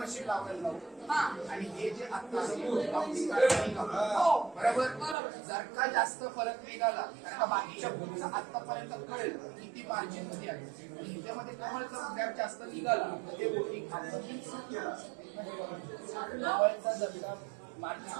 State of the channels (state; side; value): drops out; left; at 5.2 s